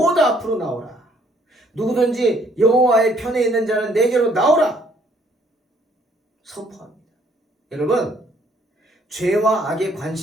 앞으로 나오라. 누구든지 여호와의 편에 있는 자는 내게로 나오라. 선포합니다. 여러분, 죄와 악에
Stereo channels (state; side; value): normal; both; correlation 0.64